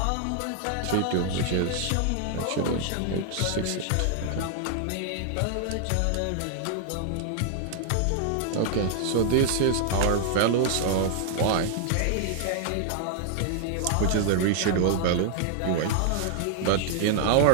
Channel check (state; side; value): different; both; correlation -0.01